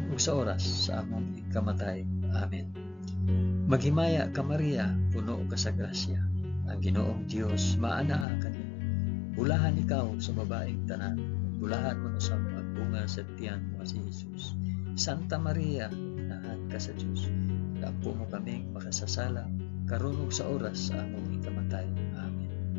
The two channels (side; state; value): right; drops out; at 8.2 s